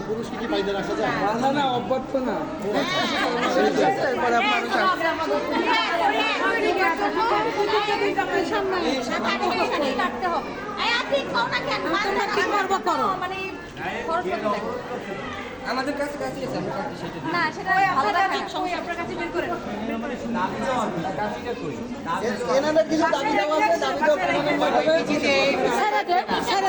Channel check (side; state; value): both; identical; correlation 1.00